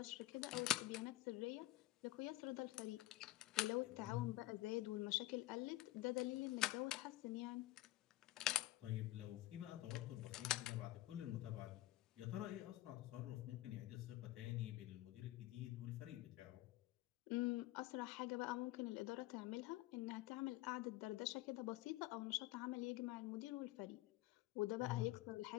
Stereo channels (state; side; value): quieter; right; 17.1 dB